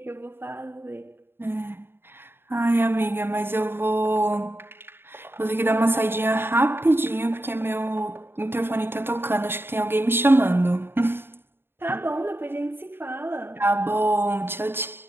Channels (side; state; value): left; late; 0.11 ms